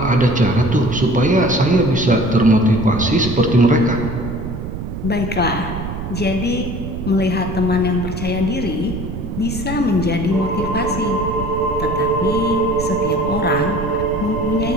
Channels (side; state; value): right; noise; rumble, 7 dB below the sound